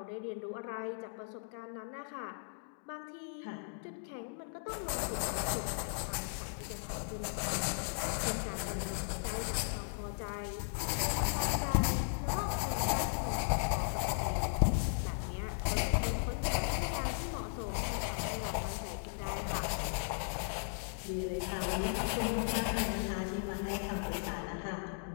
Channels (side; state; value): right; silent; digital silence